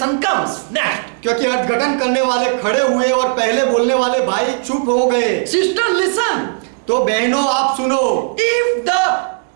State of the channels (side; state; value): left; silent; digital silence